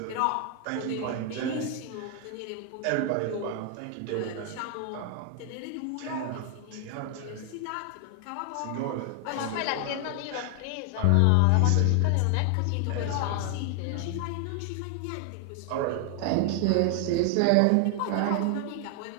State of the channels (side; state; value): both; different; correlation 0.00